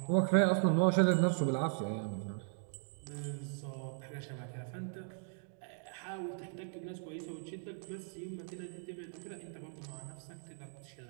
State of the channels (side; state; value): left; silent; 52 dB below the other